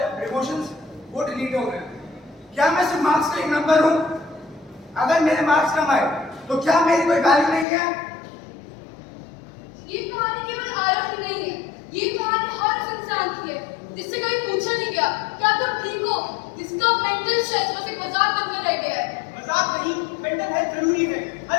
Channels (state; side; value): drops out; right; at 7.7 s